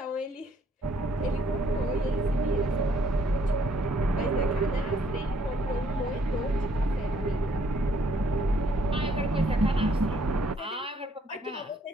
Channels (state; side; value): normal; both; correlation 0.66